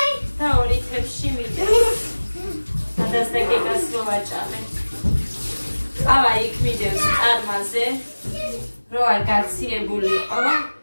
და ორი თებში მიდევს. ადას და გეგას რო ვაჭამე. ავა იქ მიდევს წარმაზე, რო არ გაციებულიყო.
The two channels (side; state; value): both; inverted; correlation -1.00